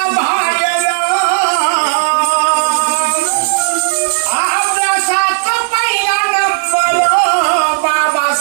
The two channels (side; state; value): left; silent; digital silence